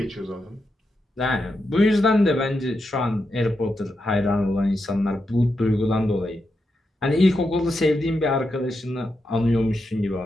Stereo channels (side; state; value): both; normal; correlation 0.86